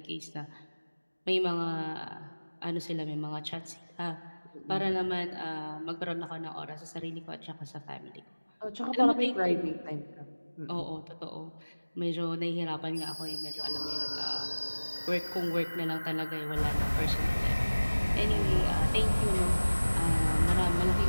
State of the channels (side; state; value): both; inverted; correlation -1.00